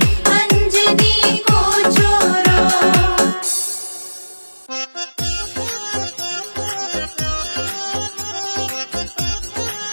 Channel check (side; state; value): both; inverted; correlation -1.00